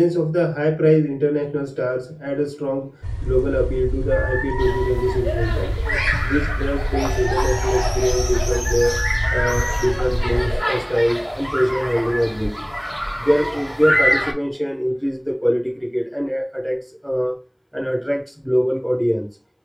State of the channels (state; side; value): identical; both; correlation 1.00